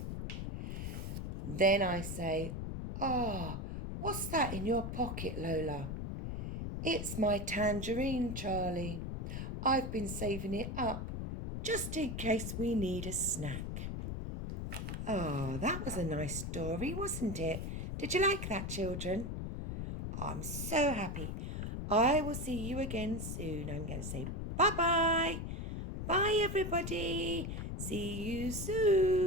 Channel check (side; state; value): left; noise; rumble, 4 dB below the sound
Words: Then I say, "What's that in your pocket, Lola?" "It's my tangerine, Charlie. I've been saving it up just in case we need a snack." That was a nice story, wasn't it? Did you like that, children? I'm so happy. I will see you again soon. I'm going to say bye-bye. Bye, everybody. See you